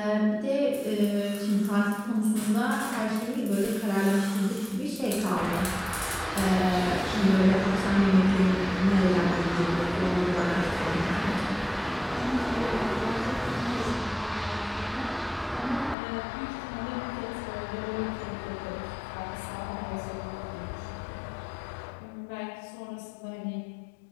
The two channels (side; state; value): right; drops out; at 16.0 s